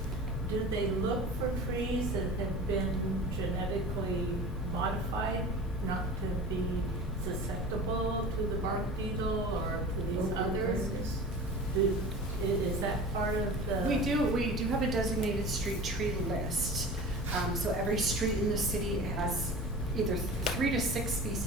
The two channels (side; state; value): both; normal; correlation 0.36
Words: do they look for trees that have been genetically modified not to be susceptible to the bark beetle or to these others? Is that part of the? We do have a designated street tree list. So every street in the city has either 3 to 6